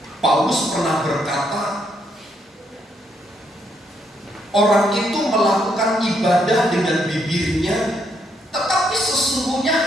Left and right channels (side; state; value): both; normal; correlation 0.74